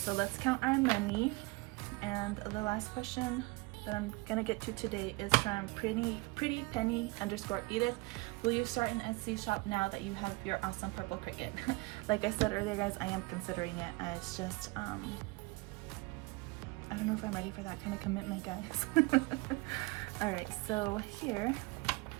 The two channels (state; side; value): quieter; left; 24.5 dB